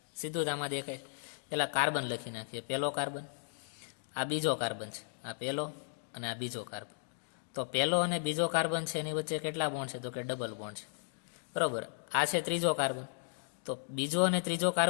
સીધું જ આમાં દેખાય. પેલા કાર્બન લખી નાખીએ. પહેલો કાર્બન, આ બીજો કાર્બન છે, આ પહેલો અને આ બીજો કાર્બન. તો પહેલો અને બીજો કાર્બન છે એની વચ્ચે કેટલા બોન્ડ છે? તો કે ડબલ બોન્ડ છે, બરાબર. આ છે ત્રીજો કાર્બન, તો બીજો અને ત્રીજો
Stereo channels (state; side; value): silent; right; digital silence